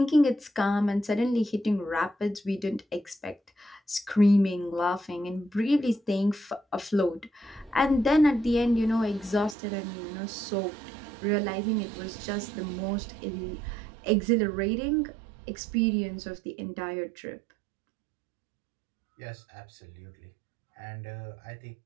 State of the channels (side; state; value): left; drops out; at 9.6 s